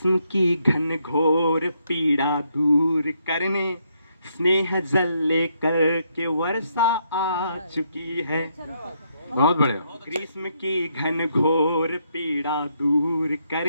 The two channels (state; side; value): inverted; both; correlation -0.76